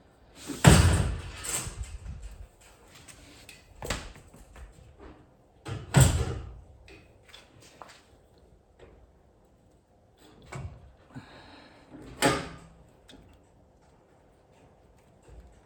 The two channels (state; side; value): identical; both; correlation 1.00